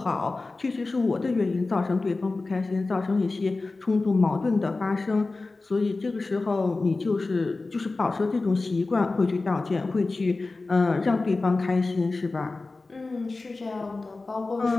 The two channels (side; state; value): right; quieter; 3.5 dB